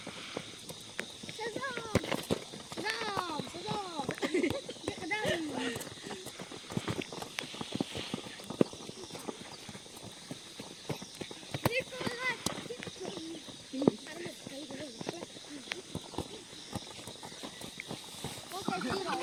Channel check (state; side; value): noise; right; rumble, 29 dB below the sound